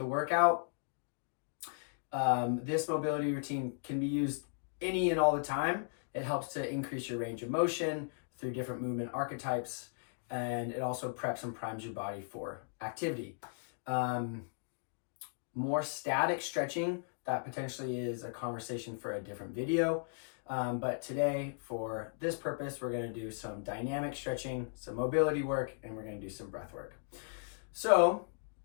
workout. This mobility routine can be used any and all the time. It helps to increase your range of motion through different movement archetypes, and it also preps and primes your body for activity. More static stretching, that potentially is a conversation for a different video. But today, for this purpose, we're going to do some dynamic stretching, some mobility work, and we're going to do some breath work. So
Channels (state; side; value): silent; right; digital silence